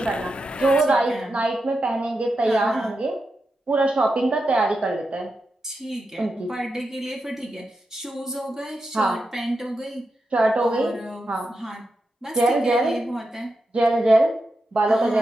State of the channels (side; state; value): both; normal; correlation 0.88